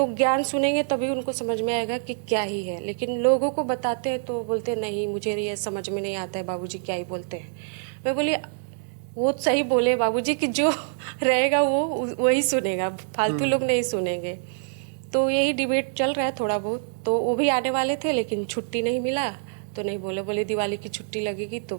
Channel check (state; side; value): silent; left; 61 dB below the other